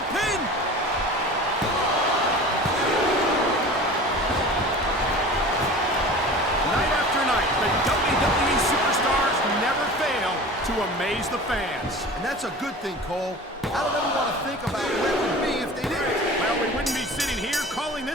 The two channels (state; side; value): normal; both; correlation 0.38